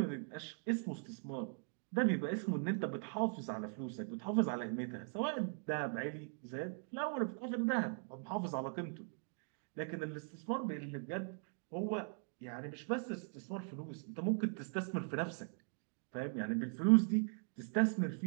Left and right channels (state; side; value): silent; left; 51 dB below the other